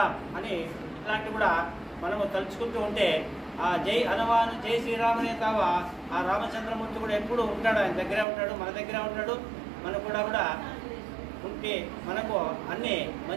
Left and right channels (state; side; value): drops out; left; at 8.2 s